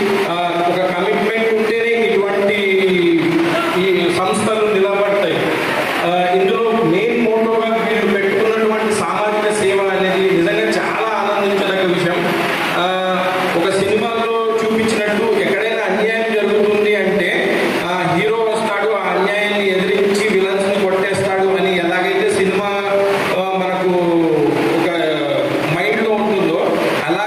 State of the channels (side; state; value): both; identical; correlation 1.00